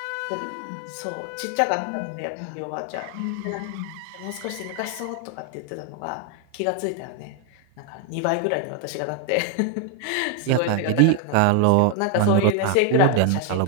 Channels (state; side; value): different; both; correlation 0.00